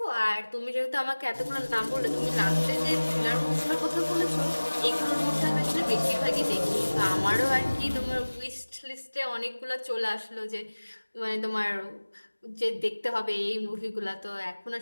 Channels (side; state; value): both; inverted; correlation -1.00